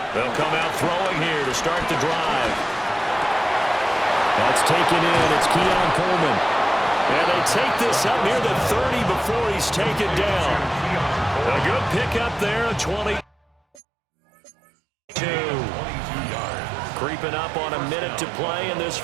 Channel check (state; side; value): drops out; left; at 13.8 s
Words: They'll come out throwing here to start the drive. That's taken in. It's Keon Coleman. And they take this up near the 30 before he's taken down. A good pickup there, a 22. Creeping up on a minute to play in this